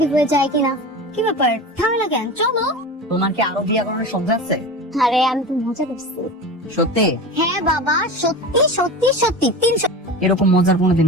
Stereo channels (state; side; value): normal; both; correlation 0.30